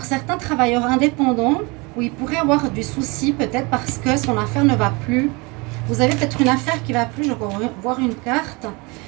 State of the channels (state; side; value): quieter; left; 27.3 dB